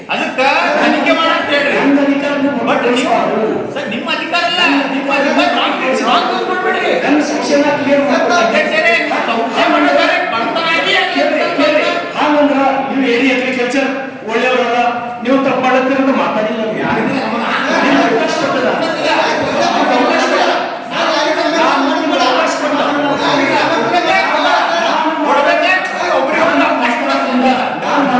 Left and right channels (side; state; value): both; identical; correlation 1.00